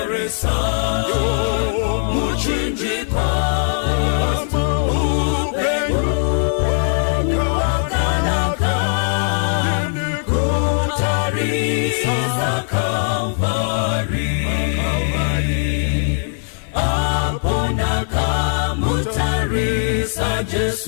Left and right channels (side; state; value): right; silent; digital silence